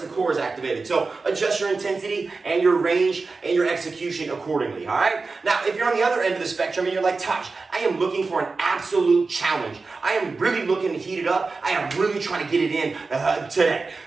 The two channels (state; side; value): quieter; left; 4.1 dB